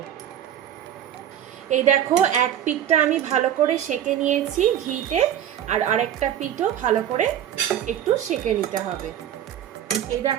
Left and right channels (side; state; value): left; quieter; 10.6 dB